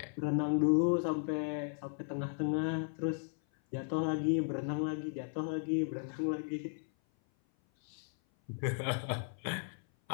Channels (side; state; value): right; silent; 54 dB below the other